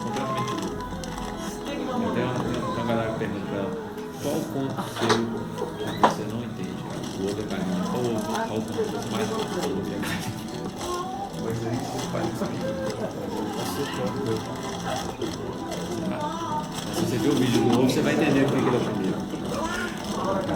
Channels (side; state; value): both; identical; correlation 1.00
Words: Completamente louco. Tem uma galera que pergunta pra ela qual conto seu que você não entende. O outro é carinho. Qual conto você mais gosta? O outro é carinho. Mas aí você faz isso aqui. Se você ver o vídeo do novo, você vai entender o que ele é o primeiro.